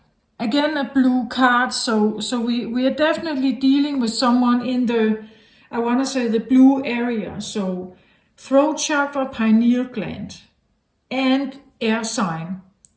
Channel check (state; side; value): identical; both; correlation 1.00